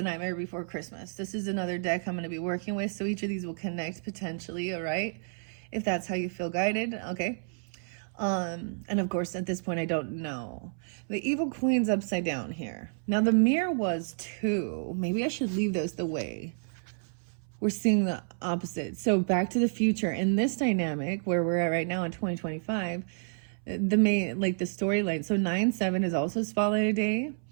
Nightmare Before Christmas. This is another deck I'm going to be working with, so each of these will connect potentially, all right? If that's how you feel guided, okay? And of course, at this point, I don't know. The Evil Queen's upside down here. Now, the mirror was 2. Maybe I should leave those the way. We're seeing the opposite. So Back to the Future, in this dynamic, where we're at right now in 2025, the main, like the storyline. So 9/7 is also spotlighted day.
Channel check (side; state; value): left; silent; 58 dB below the other